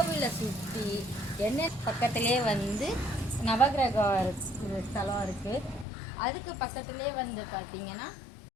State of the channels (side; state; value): right; drops out; at 5.9 s